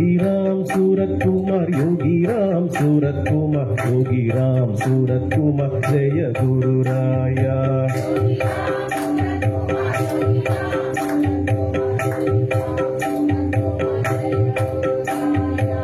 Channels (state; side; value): identical; both; correlation 1.00